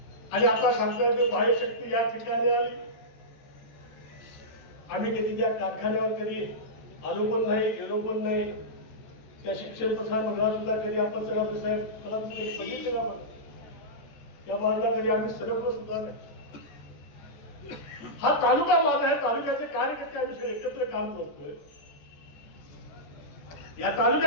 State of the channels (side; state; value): right; late; 14 ms